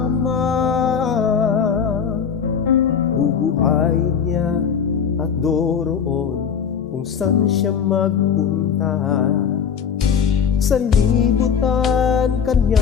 bubuhayin niya at doroon kung saan siya magpunta. Sa libutan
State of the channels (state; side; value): quieter; right; 7.1 dB